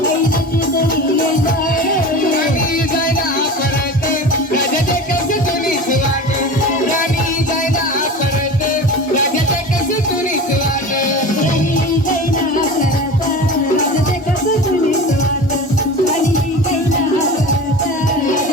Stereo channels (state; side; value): normal; both; correlation 0.33